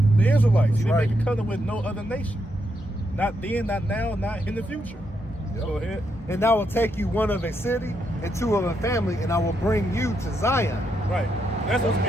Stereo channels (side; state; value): both; normal; correlation 0.80